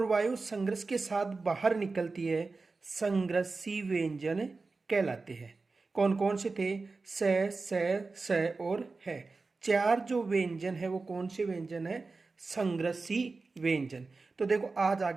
वायु संघर्ष के साथ बाहर निकलती है। संघर्षी व्यंजन कहलाते हैं। कौन कौन से थे? स और है। चार जो व्यंजन है वो कौन से व्यंजन है? संघर्षी व्यंजन। तो देखो आज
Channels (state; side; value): quieter; left; 3.9 dB